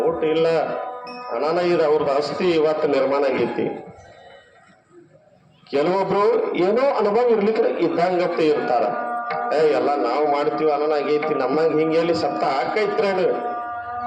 ಊಟ ಇಲ್ಲ, ಅನಾನ ಇದು ಅವ್ರದ್ದು ಆಸ್ತಿ ಇವತ್ತು ನಿರ್ಮಾಣ ಆಗೈತಿ. ಕೆಲವೊಬ್ರು ಏನೋ ಅನುಭವ ಇರ್ಲಿಕ್ಕೆ ಇದ್ದಂಗತ್ತೆ ಇರ್ತಾರ. ಎಲ್ಲ ನಾವು ಮಾಡ್ತೀವಿ, ಅನಾನ ಆಗೈತಿ, ನಮ್ಮಂಗ ಹಿಂಗೆಲ್ಲಿ ಸಪ್ತ ಹಾಕೈತ್ರೇನು,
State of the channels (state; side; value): identical; both; correlation 1.00